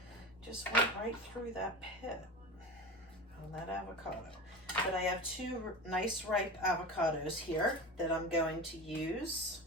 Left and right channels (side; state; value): both; normal; correlation 0.29